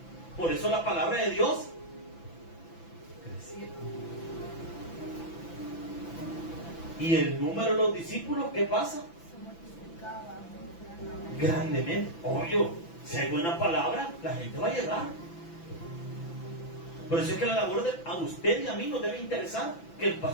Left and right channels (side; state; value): right; late; 6.0 ms